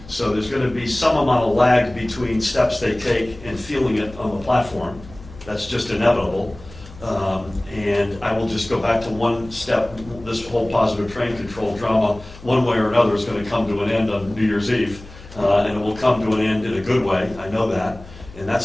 So there's going to be some amount of lag between steps they take and feeling it on the platform. That's just inevitable. And I will just go back to one step. This whole positive train control drama, one way or another, is going to come to an end on New Year's Eve. And it will come to an end in a good way. I know that. And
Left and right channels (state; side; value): noise; left; hum, 18 dB below the sound